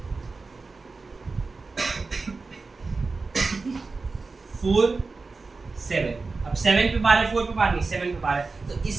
4 7, अब 7 पे बार है, 4 पे बार नहीं, 7 पे बार है, तो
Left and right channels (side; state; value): left; quieter; 4.0 dB